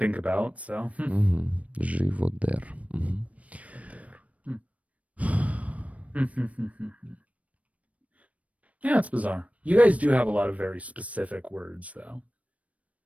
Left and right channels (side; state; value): left; late; 0.066 ms